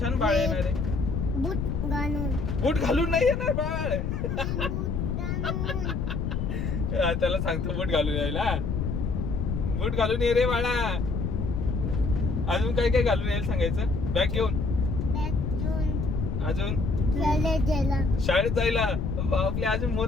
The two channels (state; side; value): noise; left; rumble, 1 dB below the sound